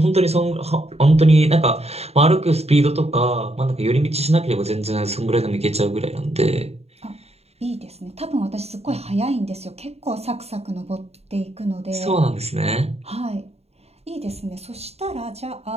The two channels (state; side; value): late; left; 0.30 ms